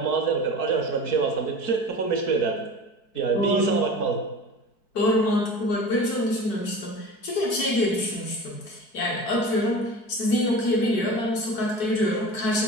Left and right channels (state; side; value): late; right; 4.6 ms